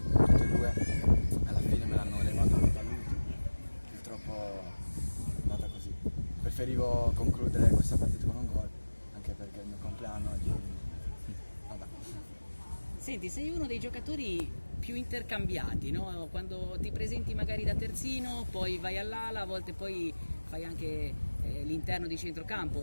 2, alla fine me l'hanno levato dall'ultimo, purtroppo è andata così. Preferivo concludere questa partita con un gol, anche perché è il mio compleanno oggi, vabbè. Senti, sei uno dei giocatori più intercambiati, no? Quando ti presenti magari da terzino, poi vai all'ala, a volte poi fai anche l'interno di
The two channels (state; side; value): inverted; both; correlation -1.00